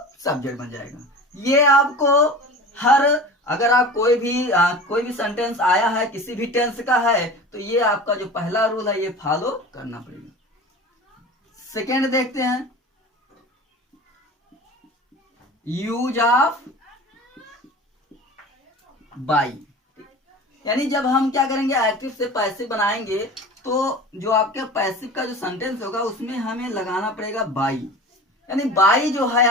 सब्जेक्ट बन जाएगा। ये आपको हर, अगर आप कोई भी सेंटेंस आया है किसी भी टेंस का है तो ये आपका जो पहला रूल है ये फॉलो करना पड़ेगा। सेकेंड देखते हैं, यूज ऑफ बाई। यानी जब हम क्या करेंगे, एक्टिव से पैसिव बनाएंगे तो जो आपके पैसिव का जो सेंटेंस होगा उसमें हमें लगाना पड़ेगा बाई। यानी बाई जो है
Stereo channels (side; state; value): both; normal; correlation 0.36